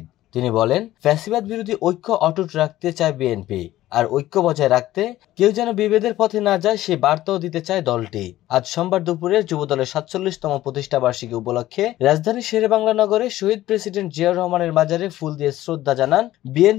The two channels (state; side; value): quieter; right; 14.9 dB